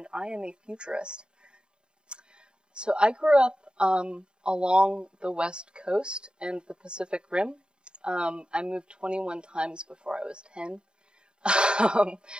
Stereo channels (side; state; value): left; late; 0.050 ms